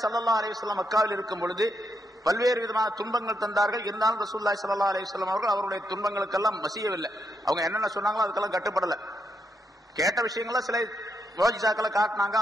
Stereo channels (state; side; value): normal; both; correlation 0.80